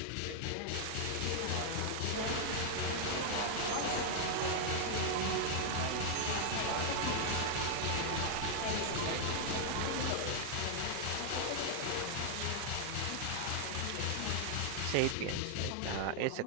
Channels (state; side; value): different; both; correlation -0.01